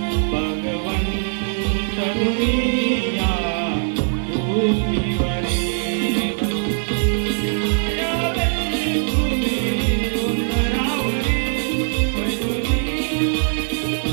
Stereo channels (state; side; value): silent; left; 65 dB below the other